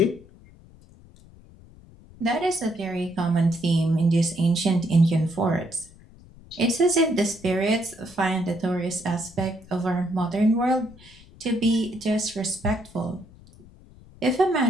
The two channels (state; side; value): noise; left; rumble, 23 dB below the sound